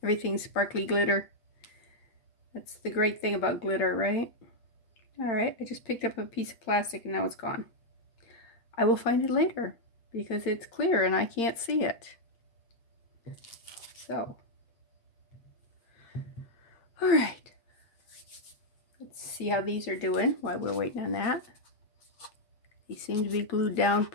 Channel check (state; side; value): late; right; 8.8 ms